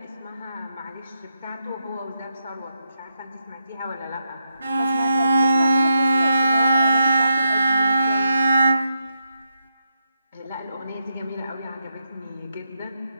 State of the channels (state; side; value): inverted; both; correlation -0.83